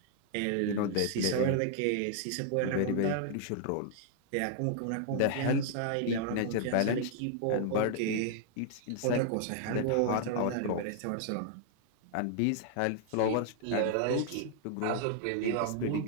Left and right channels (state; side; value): different; both; correlation 0.00